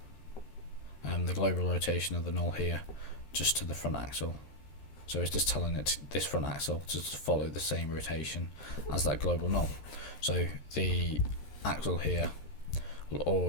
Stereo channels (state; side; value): late; right; 13 ms